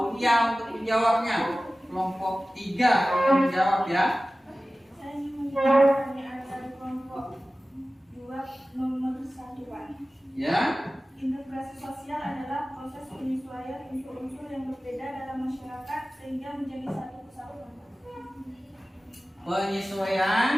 untuk menjawabnya. Kelompok 3 untuk menjawab ya. Saya ingin menjawab pertanyaan dari kelompok 2 nomor 1. Ya. Integrasi sosial adalah proses penyesuaian unsur-unsur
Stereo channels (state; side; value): normal; both; correlation 0.96